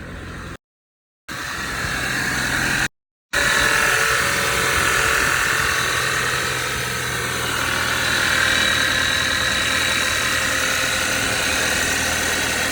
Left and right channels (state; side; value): identical; both; correlation 1.00